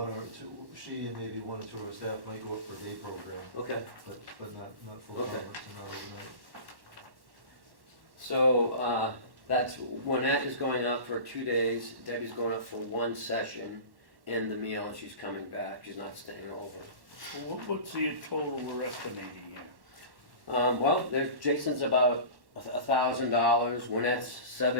or two, she and maybe one or two of her staff might go up for a day program, Okay, but not full Okay. conference and not overnight. so that's, Juanette is going up for 2 days, Debbie's going up for 1 session in the meal, and she's coming back, she's not staying over. Well, what's the total we're estimating here? Well, Jason's about $1,000, Juanette's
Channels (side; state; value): left; late; 1.1 ms